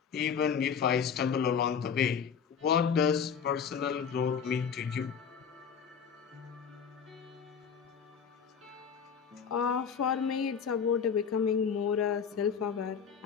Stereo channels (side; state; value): right; quieter; 6.9 dB